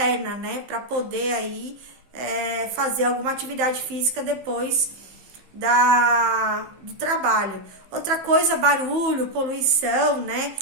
né, para poder aí fazer alguma atividade física depois do trabalho. Outra coisa, barulho, poluição, né,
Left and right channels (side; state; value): left; late; 15 ms